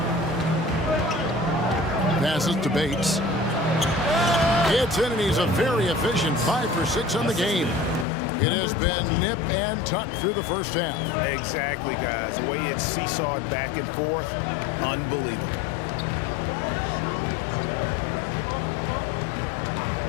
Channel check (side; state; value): right; drops out; at 8.1 s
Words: Passes to Bates. Gets in, and he's a very efficient 5 for 6 on the game. It has been nip and tuck through the first half. Exactly, guys. The way it's seesawed back and forth, unbelievable.